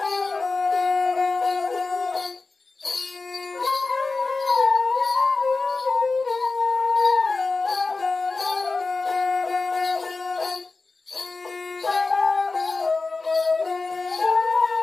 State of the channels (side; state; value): right; quieter; 3.8 dB